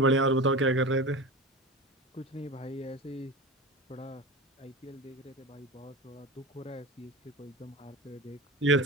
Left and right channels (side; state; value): both; normal; correlation 0.30